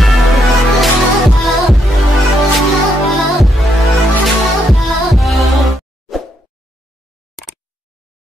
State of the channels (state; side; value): normal; both; correlation 0.77